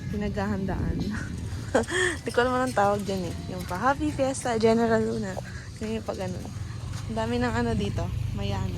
pinaghahandaan. Di ko naman ang tawag dyan eh. Yung pa Happy Fiesta, General Luna. Yung pa ganun. Ang dami ng ano dito.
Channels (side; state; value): both; identical; correlation 1.00